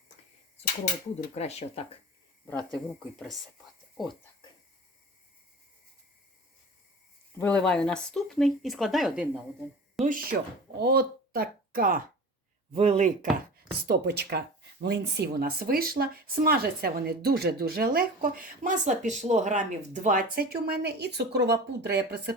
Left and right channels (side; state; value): both; normal; correlation 0.36